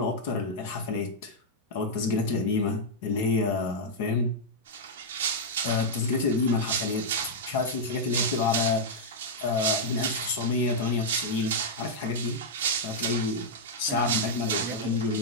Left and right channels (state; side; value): normal; both; correlation -0.06